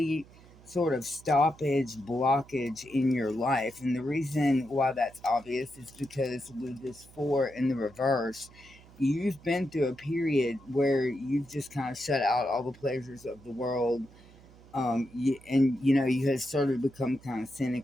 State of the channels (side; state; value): right; noise; hum, 23 dB below the sound